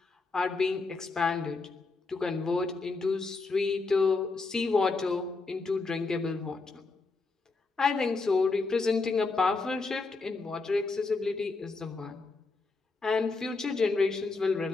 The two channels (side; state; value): right; quieter; 3.9 dB